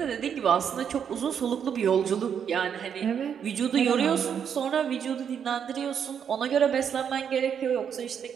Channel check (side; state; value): left; quieter; 7.9 dB